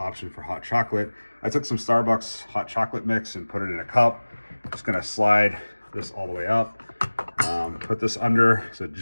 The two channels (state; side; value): inverted; both; correlation -1.00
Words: for hot chocolate. I took some Starbucks hot chocolate mix and put it in a cup. Just going to slide this all the way up, put this under so it